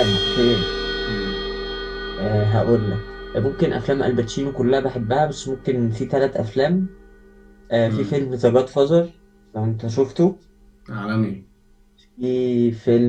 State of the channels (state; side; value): identical; both; correlation 1.00